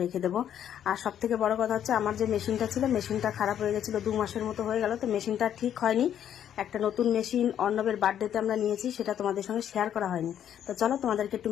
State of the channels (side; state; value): right; quieter; 9.9 dB